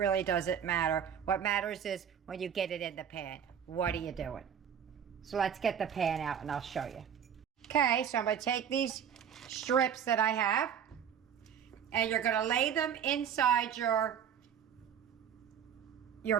doesn't matter. What matters is when you get it in the pan. What are you doing? So let's get the pan out and I'll show you. Okay, so I'm going to take these strips that I have and you're going to lay them inside your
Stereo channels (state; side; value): quieter; left; 8.4 dB